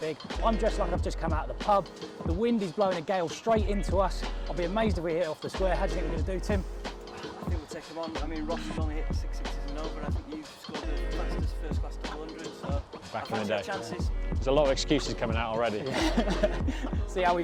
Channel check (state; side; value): identical; both; correlation 1.00